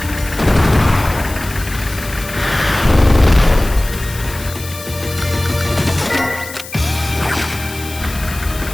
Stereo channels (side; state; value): left; noise; hiss, 14 dB below the sound